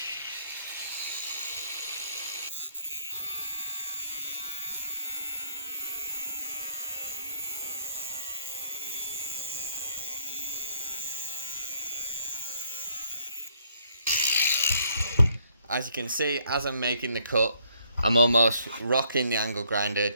as you can see, as I'm making the cut, I'm almost rocking the angle grinder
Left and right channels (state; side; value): inverted; both; correlation -0.69